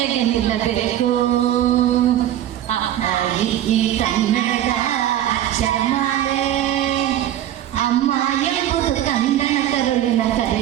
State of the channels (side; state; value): left; quieter; 12.0 dB